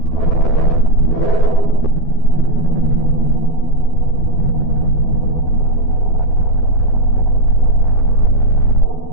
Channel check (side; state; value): right; late; 12 ms